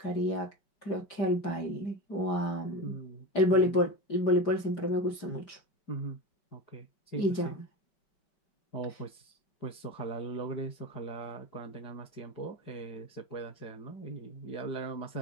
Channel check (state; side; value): late; right; 5.0 ms